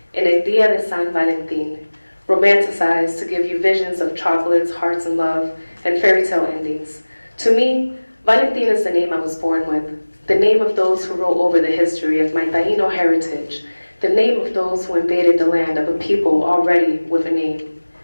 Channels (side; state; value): both; inverted; correlation -1.00